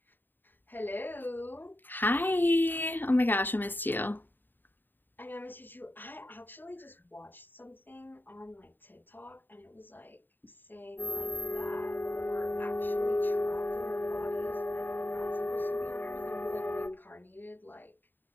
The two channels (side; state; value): right; late; 0.093 ms